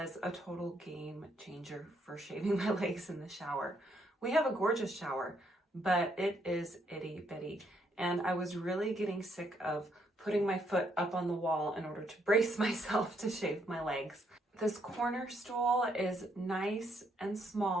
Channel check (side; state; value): both; normal; correlation 0.73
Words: a total game changer for shaving my legs in the shower. We have a gorgeous shower, but it is itty bitty, and I was really getting sick of putting my foot up on the wall in order to brace myself to shave my legs. This corner stool is nice and